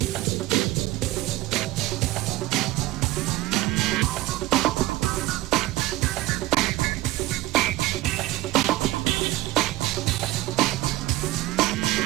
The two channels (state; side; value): quieter; left; 17.6 dB